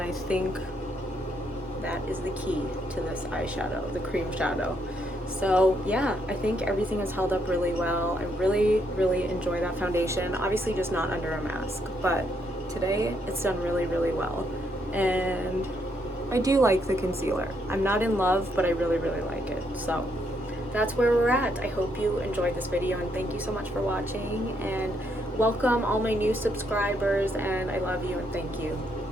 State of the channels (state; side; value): normal; both; correlation 0.75